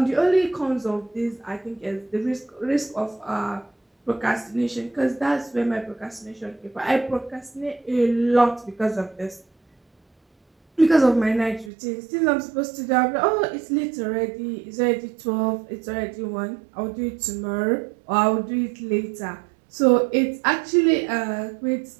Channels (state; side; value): drops out; left; at 11.7 s